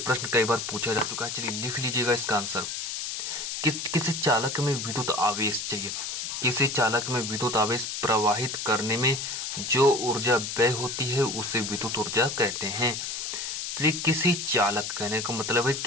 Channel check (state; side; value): noise; left; hiss, 4 dB below the sound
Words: कई बार पूछा जा चुका है। चलिए लिख लीजिएगा इसका आंसर। किसी चालक में विद्युत आवेश, चलिए किसी चालक में विद्युत आवेश प्रवाहित करने में जो ऊर्जा व्यय होती है उसे विद्युत ऊर्जा कहते हैं। चलिए किसी चालक, कहने का मतलब है